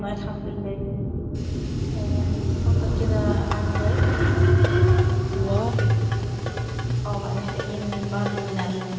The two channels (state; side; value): identical; both; correlation 1.00